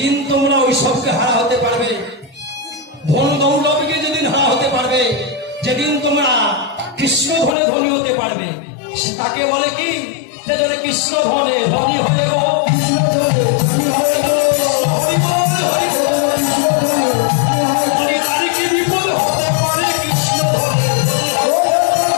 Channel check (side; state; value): right; drops out; at 7.6 s